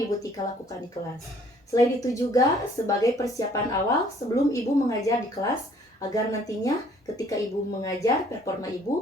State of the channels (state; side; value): normal; both; correlation 0.59